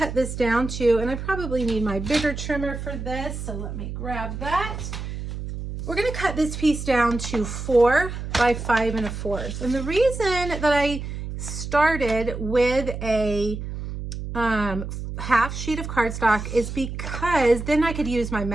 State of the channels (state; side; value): noise; right; hum, 7 dB below the sound